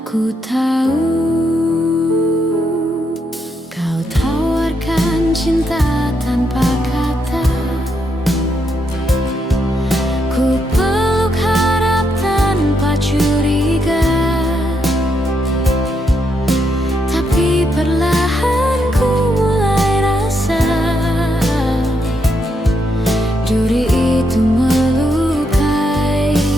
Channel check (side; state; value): both; normal; correlation 0.79